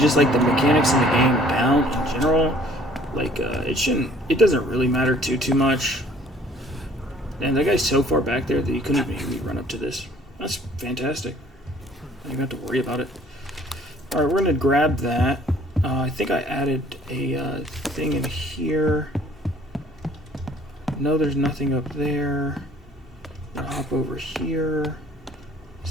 like the mechanics in the game down in general, like it doesn't really matter too much. And that guy's so far back there that he couldn't even hear me run up to this. That's fantastic. I don't even have to worry about it. All right, we're gonna grab that. I think I added a thing in here. No, there's nothing up there. I'll hop over here.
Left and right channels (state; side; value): normal; both; correlation 0.56